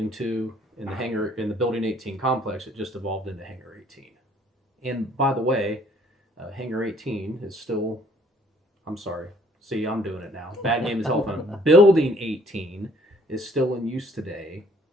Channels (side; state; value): both; normal; correlation 0.60